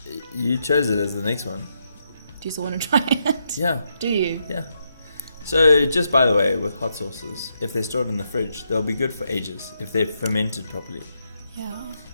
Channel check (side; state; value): both; inverted; correlation -0.80